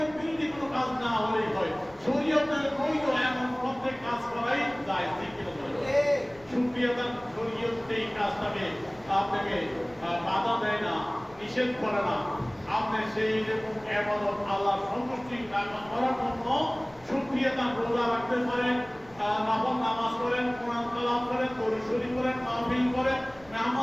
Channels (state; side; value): noise; left; rumble, 25 dB below the sound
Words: বিরোধী কোনো কাজ না হলেই হয় শরীয়তের বৈধ এমন প্রত্যেক কাজ করাই যায় ঠিক কিনা শুকরিয়াদান শরীয়ত এই কাজটাকে আপনাকে বাধা দেয় না নিষেধ করে না আপনি সেই রকম ইবাদত আল্লাহর সন্তুষ্টি করার জন্য শুকরিয়াদান রোজা রাখতে পারেন নফল নামাজ পড়েন কোরআন তেলাওয়াত করেন দরুদ শরীফ করেন মাহফিল করেন